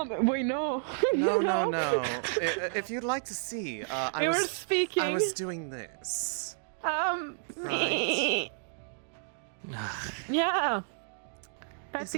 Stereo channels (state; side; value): silent; left; digital silence